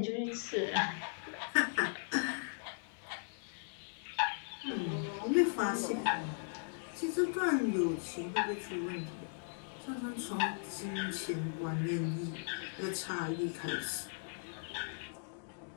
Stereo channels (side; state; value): right; silent; digital silence